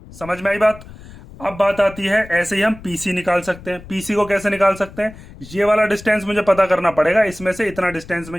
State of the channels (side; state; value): left; noise; rumble, 18 dB below the sound